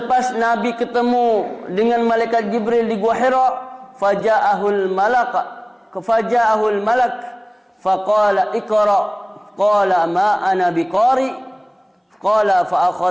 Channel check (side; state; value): both; identical; correlation 1.00